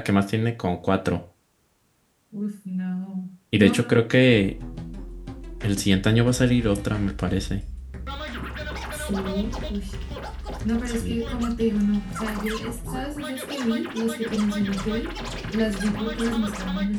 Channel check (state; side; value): identical; both; correlation 1.00